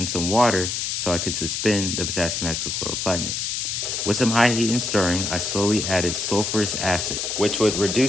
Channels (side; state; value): left; noise; hiss, 2 dB below the sound